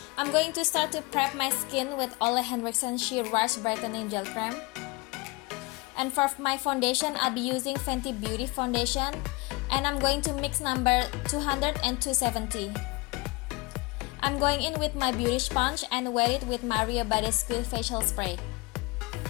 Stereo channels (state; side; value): quieter; right; 25.1 dB